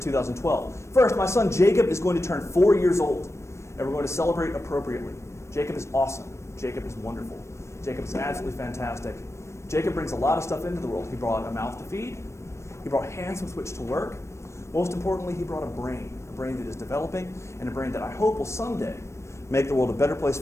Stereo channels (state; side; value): late; right; 0.13 ms